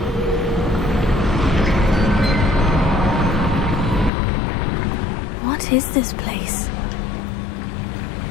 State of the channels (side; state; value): right; drops out; at 4.1 s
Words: What is this place?